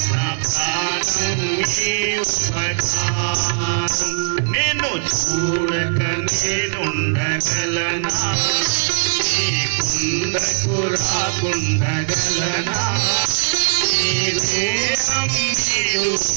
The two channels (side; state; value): left; silent; 66 dB below the other